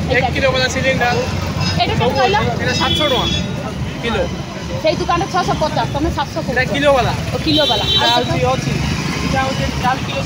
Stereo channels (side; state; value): both; identical; correlation 1.00